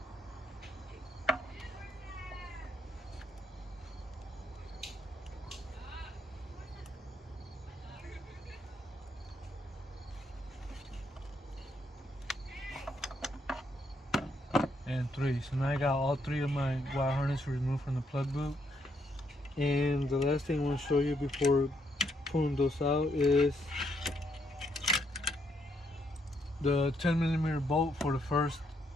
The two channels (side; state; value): both; normal; correlation 0.75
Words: And three. So now I got all three of my wire harness removed from the plug boot. And the last thing I want to show you before pulling those out is the 10mm bolt for the first